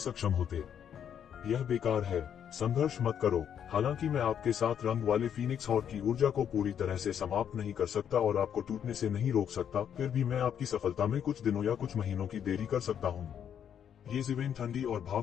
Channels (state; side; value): quieter; right; 8.8 dB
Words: होते। यह बेकार है। संघर्ष मत करो। हालांकि मैं आपके 7 रंग वाले फीनिक्स हॉर्न की ऊर्जा को पूरी तरह से समाप्त नहीं कर सकता और आपको टूटने से नहीं रोक सकता, फिर भी मैं आपकी सफलता में कुछ दिनों या कुछ महीनों की देरी कर सकता हूँ। ये जिवेन ठंडी और